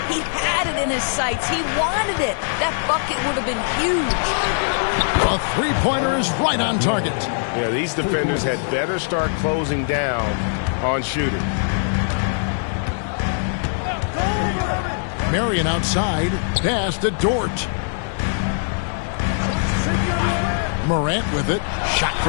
he had it in his sights. He wanted it. That bucket would have been huge. A three-pointer is right on target. Yeah, these defenders had better start closing down on shooting. Marion outside. Pass to Dort. Morant with it. Shot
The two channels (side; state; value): right; silent; digital silence